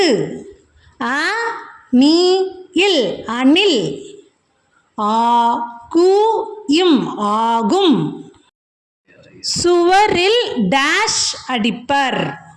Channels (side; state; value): both; identical; correlation 1.00